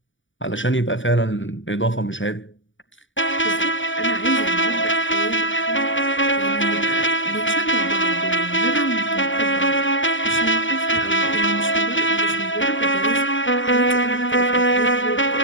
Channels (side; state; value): right; late; 0.56 ms